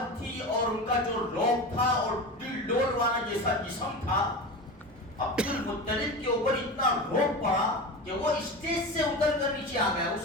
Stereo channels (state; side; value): normal; both; correlation 0.27